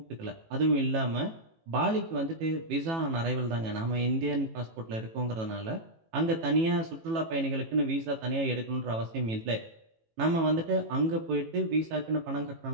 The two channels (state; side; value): late; left; 18 ms